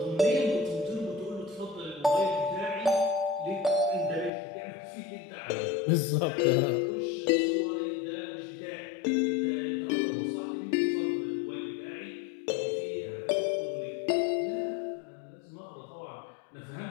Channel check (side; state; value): right; drops out; at 4.3 s